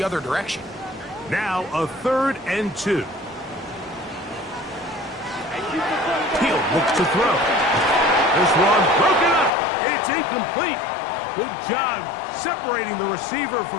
other direction. Now a 3rd and 2. Hill looks to throw. This one broken up. It's incomplete. Good job separating the receiver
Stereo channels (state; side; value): drops out; right; at 9.5 s